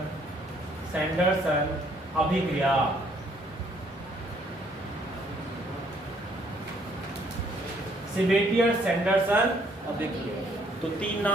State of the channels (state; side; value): normal; both; correlation 0.65